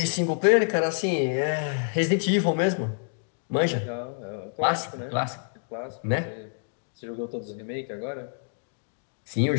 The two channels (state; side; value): silent; right; digital silence